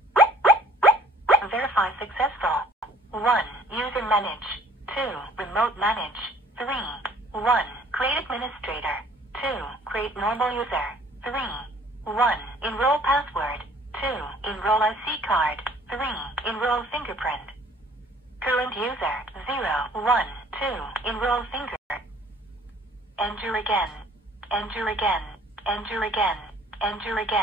Verify successful. 1. User manage. 2. Remote manage. 3. 1. Create administrator. 2. Create normal user. 3. 1. Enroll password. 2. Enroll IC card. 3. Enroll fingerprint. Current user 0, 1, 2. Enroll finger. Enter again. Enter again. Enter again. Enter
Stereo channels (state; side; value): normal; both; correlation 0.55